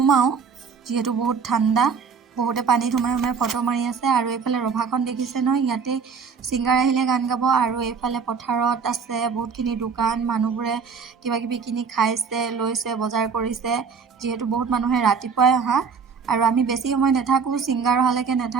যেহেতু বহুত ঠাণ্ডা বহুতে পানীত সোমাই ফটো মাৰি আছে আৰু এইফালে ৰভাখন দেখিছে নহয় ইয়াতে সিংগাৰ আহিলে গান গাব আৰু এইফালে পথাৰত আছে বহুতখিনি দোকান মানুহবোৰে কিবা কিবি কিনি খাইছে লৈছে বজাৰ কৰিছে যেহেতু বহুত মানুহে ৰাতিপুৱাই অহা আৰু আমি বেছি সময় নাথাকো সিংগাৰ অহালৈকে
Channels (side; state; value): left; quieter; 5.8 dB